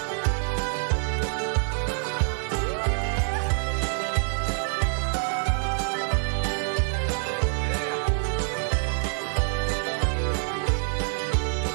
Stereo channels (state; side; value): silent; left; 61 dB below the other